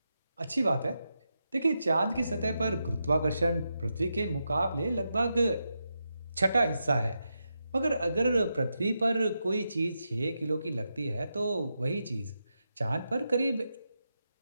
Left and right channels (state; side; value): inverted; both; correlation -0.87